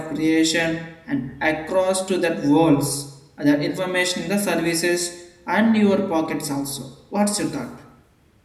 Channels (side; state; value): both; identical; correlation 1.00